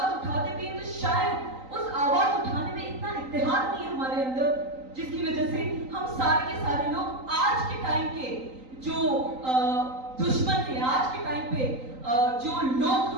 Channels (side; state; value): left; late; 3.9 ms